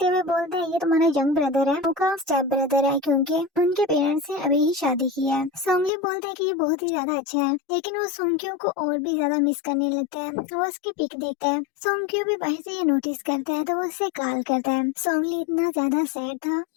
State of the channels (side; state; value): right; drops out; at 5.9 s